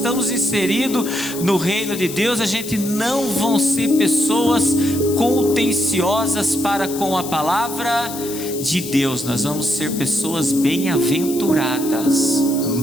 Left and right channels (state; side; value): noise; left; hiss, 10 dB below the sound